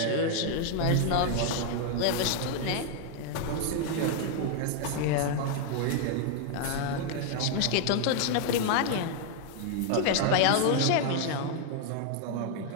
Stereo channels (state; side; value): different; both; correlation 0.00